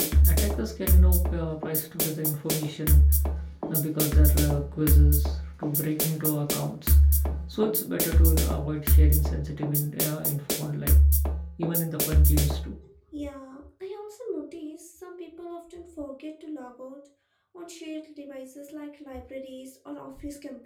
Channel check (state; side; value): identical; both; correlation 1.00